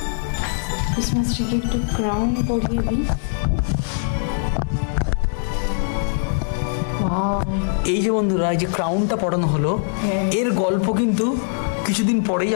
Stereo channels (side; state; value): right; silent; digital silence